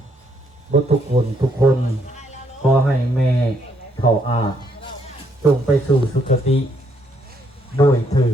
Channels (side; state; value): both; normal; correlation 0.72